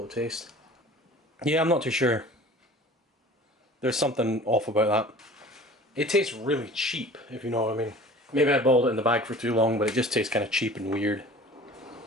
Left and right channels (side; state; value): both; normal; correlation 0.44